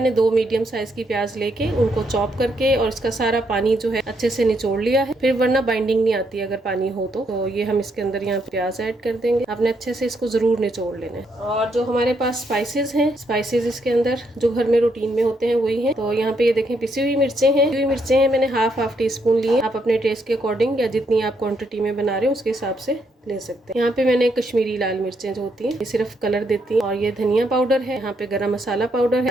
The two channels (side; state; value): both; normal; correlation 0.76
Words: 2 मीडियम साइज की प्याज लेके उनको चॉप करके और इसका सारा पानी जो है अच्छे से निचोड़ लिया है। फिर वरना बाइंडिंग नहीं आती अगर पानी हो तो ये हम इसके अंदर यहाँ प्याज ऐड कर देंगे। आपने अच्छे से इसको जरूर निचोड़ लेना है। और जो हमारे पास स्पाइसेस हैं, स्पाइसेस इसके अंदर जो घर में रूटीन में होते हैं वही हैं। तो यहाँ पे ये देखें पिसी हुई मिर्चें हैं। पिसी हुई मिर्चें हैं मैंने हाफ टी स्पून ली है। आप अपने टेस्ट के अकॉर्डिंग या जितनी आप क्वांटिटी में बना रहे हो उसके हिसाब से ले सकते हैं। यहाँ पे मैंने कश्मीरी लाल मिर्चें जो होती हैं ये सिर्फ कलर देती हैं। और ये धनिया पाउडर है, यहाँ पे गरम मसाला पाउडर है,